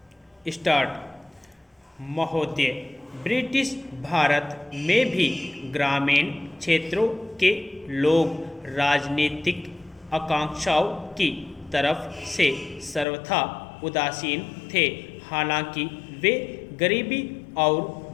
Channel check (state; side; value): drops out; right; at 13.1 s